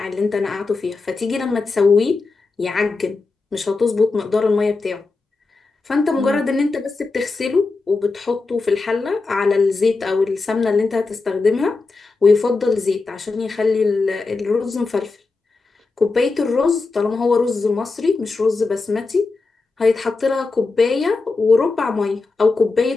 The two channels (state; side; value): quieter; right; 3.9 dB